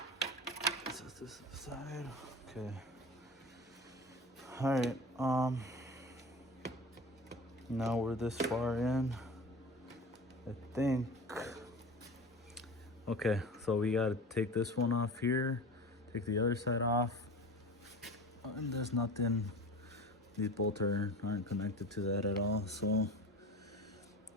Set this aside. Okay. All right. Now we're this far in, I think. Okay, so we gotta take this one off here, take the other side off, and there's nothing. These bolts aren't connected to that at all, so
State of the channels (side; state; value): both; normal; correlation 0.34